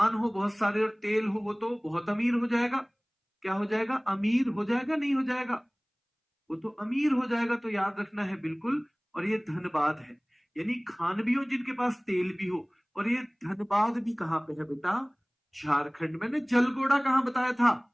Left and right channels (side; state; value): both; identical; correlation 1.00